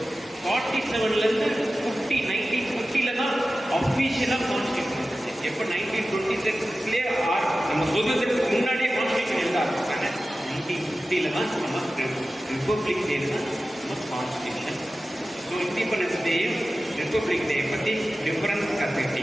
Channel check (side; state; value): both; normal; correlation 0.95